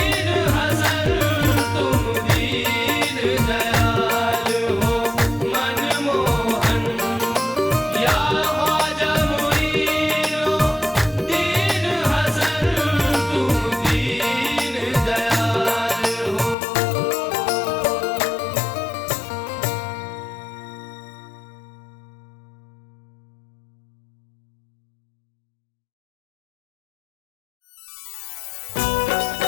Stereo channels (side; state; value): right; drops out; at 16.6 s